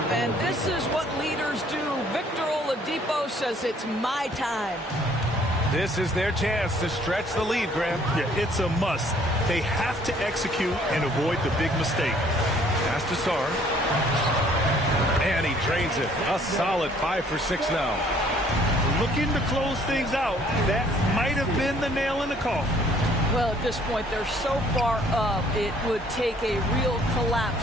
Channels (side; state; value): both; normal; correlation 0.60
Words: this is what leaders do. Victor Oladipo says it's my time. This is their chance to stretch the lead, Graham. Yeah, it's a must. They have to execute and avoid the big mistake. Pass to Sarr. And he drains it. A solid 5 for 6 now. Looking to close things out. That might have been the nail in the coffin. Well, at this point, they're so far up, it would take a real